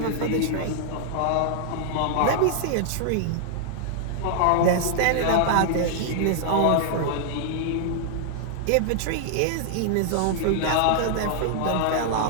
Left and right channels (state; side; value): different; both; correlation -0.01